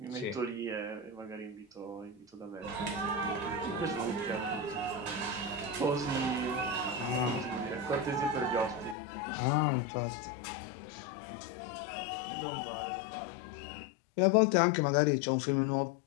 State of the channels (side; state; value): right; drops out; at 9.0 s